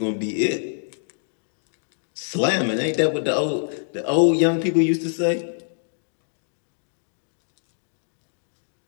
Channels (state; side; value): silent; right; digital silence